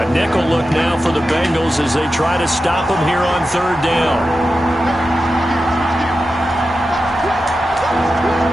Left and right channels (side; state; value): both; normal; correlation 0.91